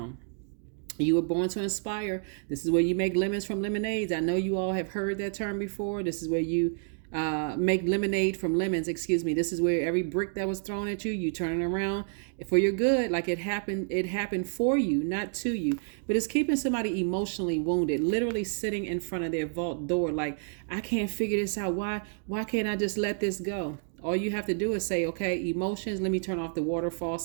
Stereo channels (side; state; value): left; silent; 58 dB below the other